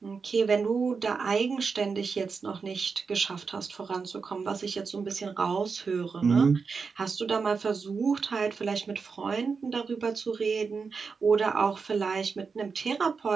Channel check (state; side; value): quieter; left; 5.1 dB